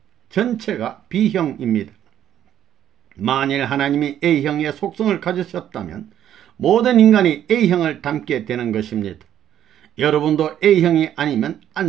전체가 B형입니다. 만일 하나님이 A형의 속성을 가지셨다면 모든 인간이 A형을 닮게 되는 것입니다. 여러분도 A형이 아니면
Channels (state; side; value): quieter; left; 10.8 dB